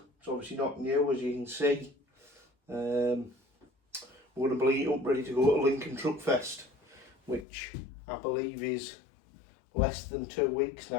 It's obviously not new, as you can see. We're going to bleed up ready to go to Lincoln Truck Fest, which I believe is less than 2 weeks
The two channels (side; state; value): right; drops out; at 7.5 s